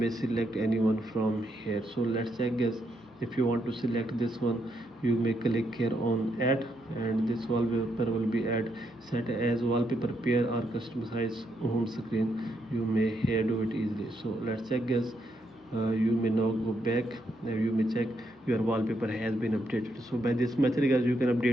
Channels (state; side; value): normal; both; correlation 0.78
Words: select anyone from here. So let's check guys. If you want to select this one, you may click here on add, and this wallpaper will be add set as wallpaper pair or customize home screen. You may here do it easily. So let's check guys. You may now go back and you may check your wallpaper has been updated. So by this method guys, you can